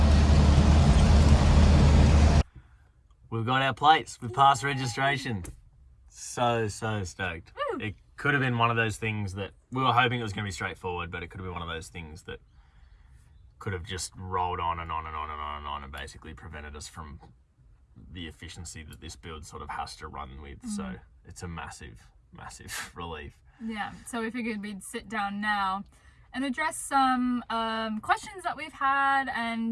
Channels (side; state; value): both; identical; correlation 1.00